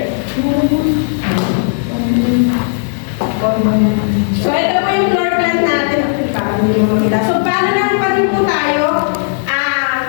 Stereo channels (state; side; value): silent; right; digital silence